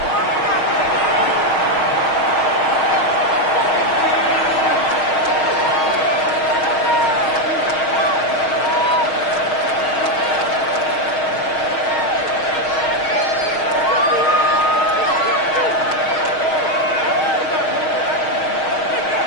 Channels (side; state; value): right; late; 6.4 ms